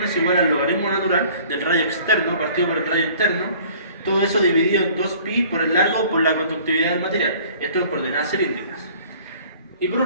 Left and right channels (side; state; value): both; inverted; correlation -0.51